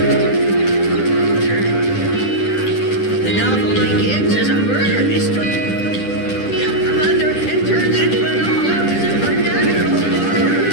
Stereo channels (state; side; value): late; right; 10 ms